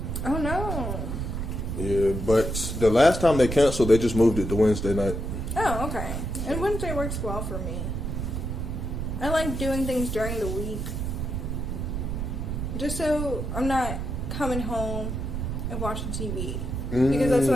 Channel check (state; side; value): noise; right; rumble, 3 dB below the sound